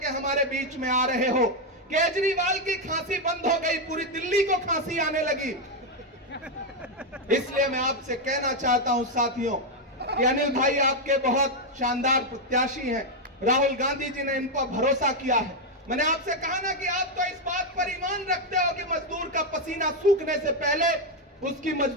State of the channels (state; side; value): normal; both; correlation 0.03